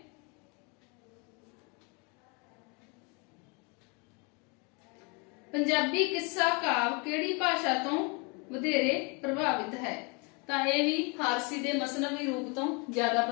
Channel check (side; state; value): right; quieter; 31.9 dB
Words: ਪੰਜਾਬੀ ਕਿੱਸਾ ਕਾਵ ਕਿਹੜੀ ਭਾਸ਼ਾ ਤੋਂ ਵਧੇਰੇ ਪ੍ਰਭਾਵਿਤ ਹੈ? ਤਾਂ ਇਹ ਵੀ ਫਾਰਸੀ ਦੇ ਮਸਨਵੀ ਰੂਪ ਤੋਂ ਜ਼ਿਆਦਾ